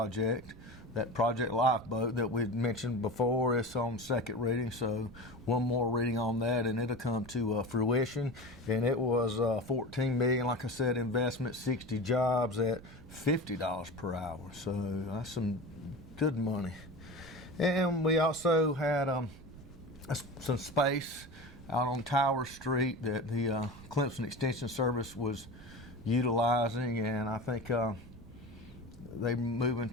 That project Lifeboat that we'd mentioned before is on second reading, so one more reading on that and it'll come to fruition. And it was $14 million, like I said, investment, 60 jobs at $50 per hour. So that's some good money. And we also had some space out on Tower Street that the Clemson Extension Service was utilizing, and I think they moving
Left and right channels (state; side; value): noise; right; rumble, 19 dB below the sound